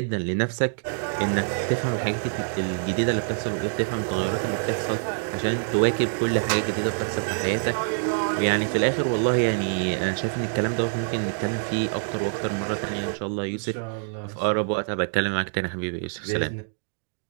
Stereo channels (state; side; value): silent; left; digital silence